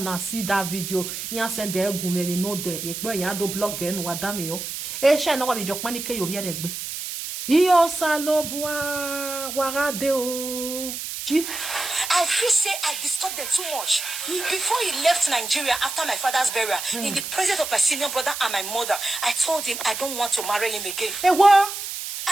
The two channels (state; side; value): noise; right; hiss, 6 dB below the sound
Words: see that video. You send the egu me no there e pe yan do blog e no wa da me o e she na wa be jokpan ni ke yo bi e gbe Iyo Salobua warade o. I feel say I disturbed them too much. Before he left Nigeria after my father's burial, in the presence of my senior brother and my mother, I told him I don't want to marry him again. Hey, what?